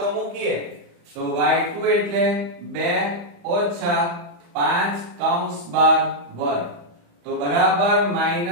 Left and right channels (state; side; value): late; left; 35 ms